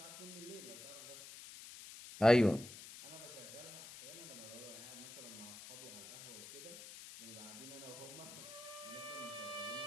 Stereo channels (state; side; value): noise; left; hiss, 13 dB below the sound